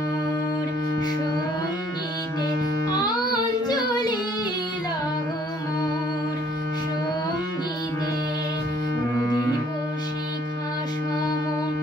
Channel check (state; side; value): normal; both; correlation 0.62